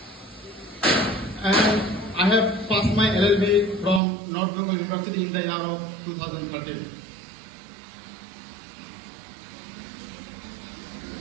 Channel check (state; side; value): drops out; left; at 4.0 s